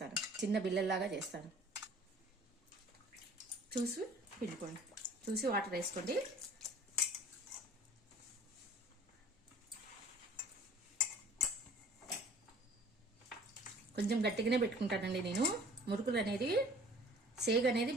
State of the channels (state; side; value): normal; both; correlation 0.50